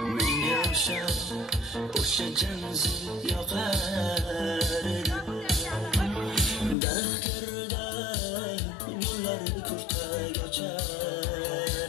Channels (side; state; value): right; drops out; at 6.8 s